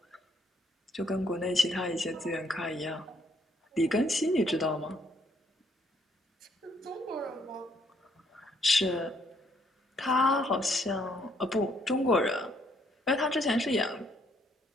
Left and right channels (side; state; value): both; normal; correlation 0.69